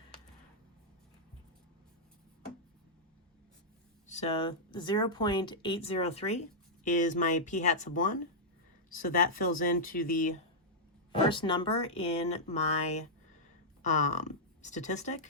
So 0.803 is my P hat sub 1. So that fills into the first number in my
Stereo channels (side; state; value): both; normal; correlation -0.09